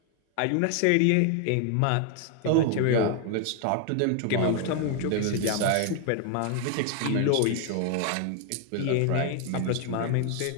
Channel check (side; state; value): both; different; correlation 0.00